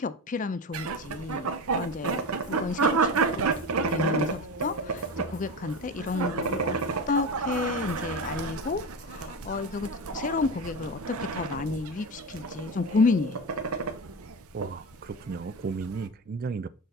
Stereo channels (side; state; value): both; normal; correlation 0.22